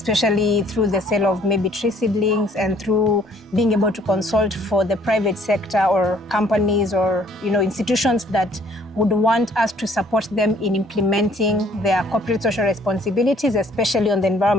through the sale of maybe tree seedlings, and through being able to consult for the private sector or companies or institutions that would want us to support them in implementing their corporate social responsibilities, especially on the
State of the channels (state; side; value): normal; both; correlation 0.60